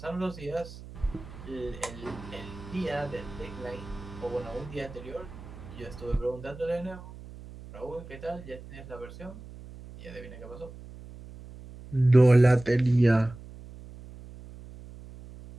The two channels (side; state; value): right; noise; hum, 15 dB below the sound